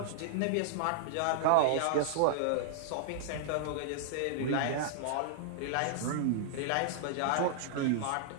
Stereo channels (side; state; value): both; different; correlation -0.01